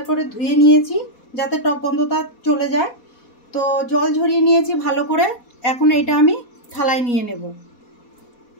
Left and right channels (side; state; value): right; late; 4.2 ms